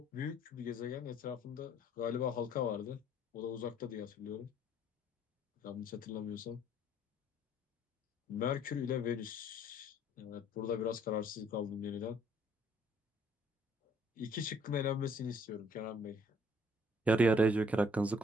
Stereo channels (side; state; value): both; normal; correlation 0.61